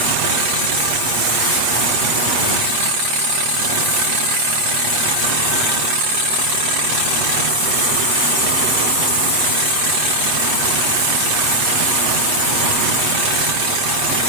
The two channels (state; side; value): late; left; 8.2 ms